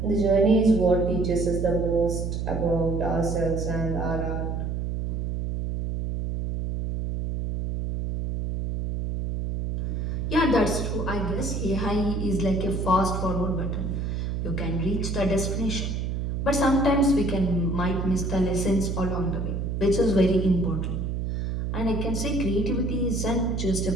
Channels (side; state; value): right; noise; hum, 2 dB below the sound